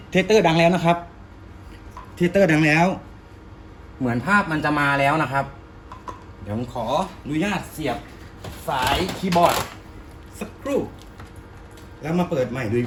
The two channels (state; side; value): identical; both; correlation 1.00